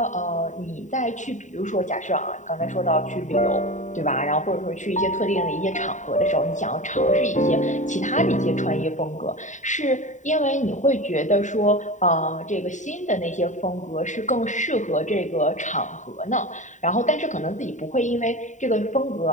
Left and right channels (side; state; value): right; late; 0.36 ms